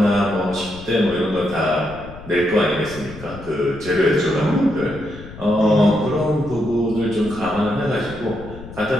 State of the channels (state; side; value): noise; left; rumble, 15 dB below the sound